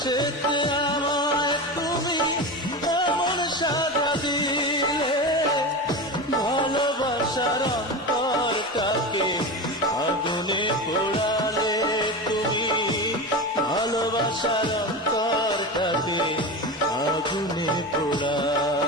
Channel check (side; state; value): both; normal; correlation 0.24